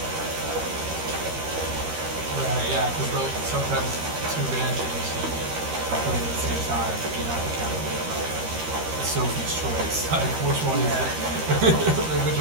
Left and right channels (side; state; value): left; late; 13 ms